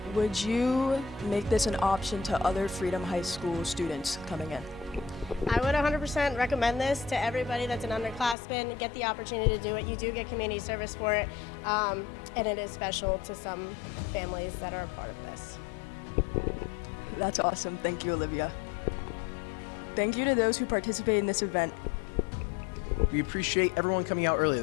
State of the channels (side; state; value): right; drops out; at 8.3 s